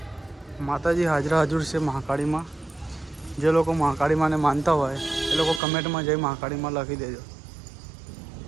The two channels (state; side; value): drops out; left; at 5.6 s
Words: માતાજી હાજર છે મહાકાળીમાં. જે લોકો મહાકાળીમાંને માનતા હોય એ લોકો કમેન્ટમાં જઈ મહાકાળીમાં લખી દેજો.